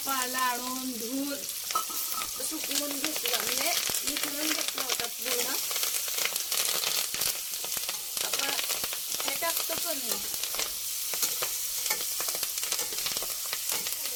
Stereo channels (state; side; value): identical; both; correlation 1.00